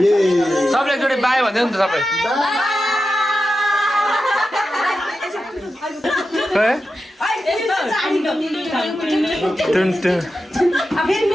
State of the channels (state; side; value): normal; both; correlation 0.91